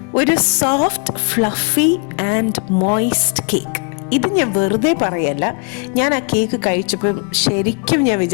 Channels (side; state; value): right; quieter; 36.1 dB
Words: ഒരു soft fluffy and moist cake. ഇത് ഞാൻ വെറുതെ പറയല്ല. ഞാൻ ആ കേക്ക് കഴിച്ചപ്പം ശരിക്കും ഞാൻ